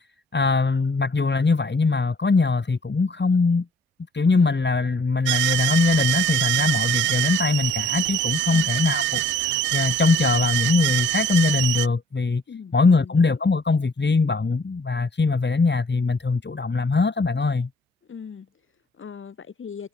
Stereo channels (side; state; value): both; normal; correlation 0.57